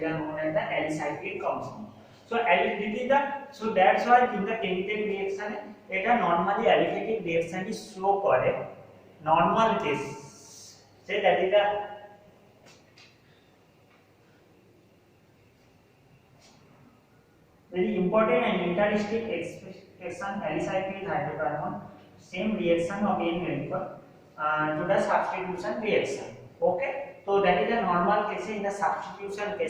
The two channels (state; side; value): identical; both; correlation 1.00